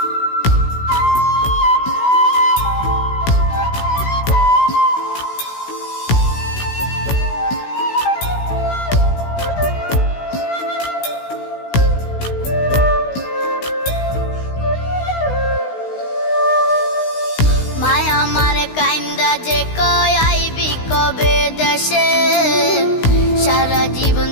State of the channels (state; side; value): late; right; 16 ms